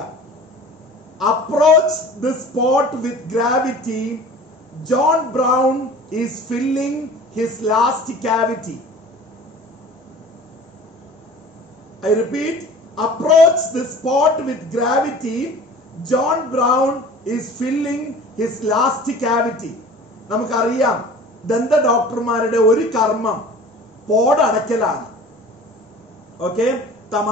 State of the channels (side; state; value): both; normal; correlation 0.43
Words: Approach the spot with gravity. John Brown is filling his last cavity. I repeat, approach the spot with gravity. John Brown is filling his last cavity. നമുക്കറിയാം ദന്ത ഡോക്ടർമാരുടെ ഒരു കർമ്മം പോടടക്കലാണ്. ഓക്കെ,